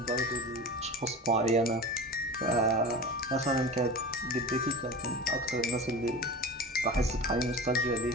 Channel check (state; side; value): normal; both; correlation 0.32